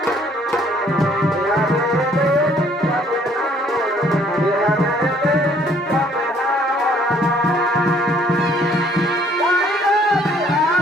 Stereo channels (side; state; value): both; normal; correlation 0.62